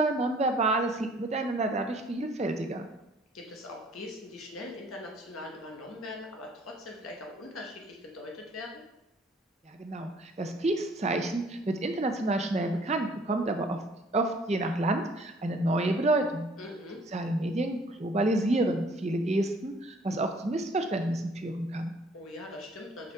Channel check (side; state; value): both; normal; correlation 0.58